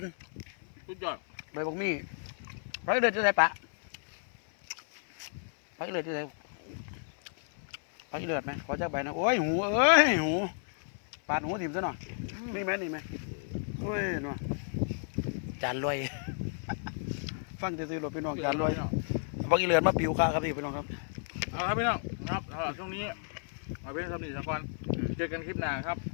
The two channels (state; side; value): silent; right; 56 dB below the other